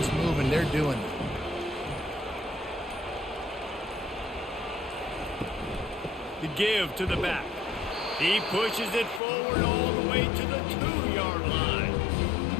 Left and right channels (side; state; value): right; drops out; at 9.2 s